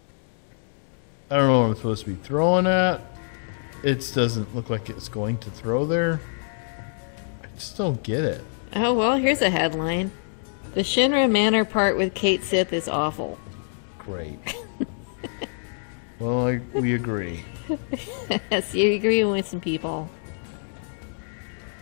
I don't know what I'm supposed to be throwing at. It doesn't look like it's going to throw there. I just don't get it. Oh, well, here's a headline. The Shinra Manor part with Cait Sith is awful. Great. Well, we agree. Yes, you agree with some people.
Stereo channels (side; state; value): right; silent; digital silence